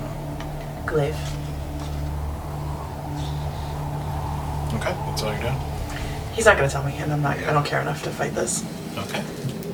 Glaive. Okay, that's all you're doing? He's not gonna tell me, and I don't care enough to fight this. Okay.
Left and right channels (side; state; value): both; identical; correlation 1.00